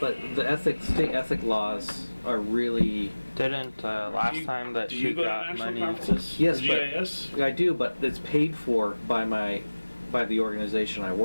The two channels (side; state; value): both; inverted; correlation -1.00